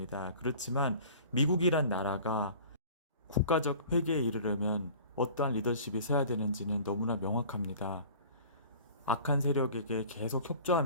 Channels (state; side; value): inverted; both; correlation -0.44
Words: 그렇지만 미국이란 나라가 국가적 회개에 이르려면 어떠한 리더십이 서야 되는지는 너무나 명확합니다. 악한 세력에게 계속